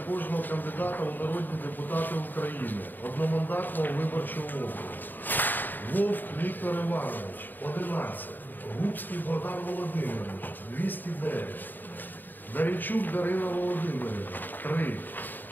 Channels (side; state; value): right; late; 0.090 ms